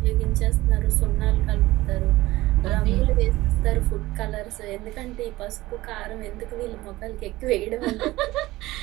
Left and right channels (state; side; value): quieter; left; 18.1 dB